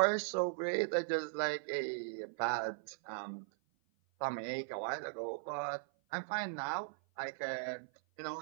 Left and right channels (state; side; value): silent; left; 52 dB below the other